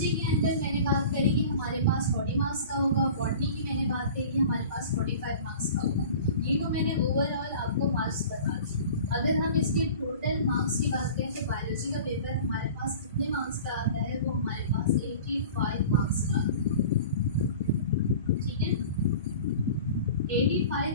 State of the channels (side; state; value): both; inverted; correlation -0.40